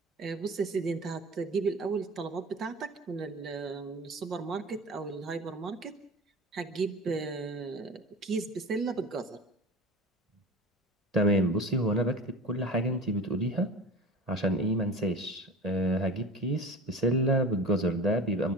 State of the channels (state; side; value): normal; both; correlation 0.35